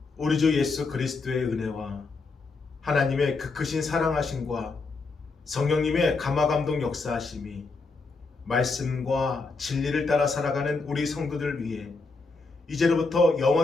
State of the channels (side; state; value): right; quieter; 4.0 dB